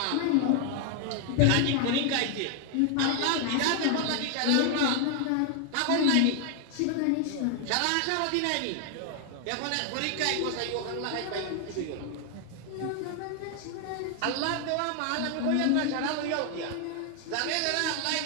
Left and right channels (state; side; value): different; both; correlation 0.00